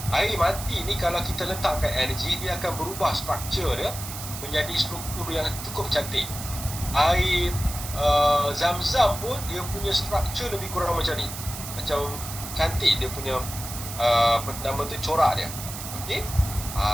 Air mati ni kalau kita letakkan energi, dia akan berubah struktur dia menjadi struktur yang cukup cantik. Air Zam-Zam pun dia punya struktur lebih kurang macam ni, macam cantik dia punya nama tu, corak dia. Okey.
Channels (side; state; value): right; noise; hiss, 9 dB below the sound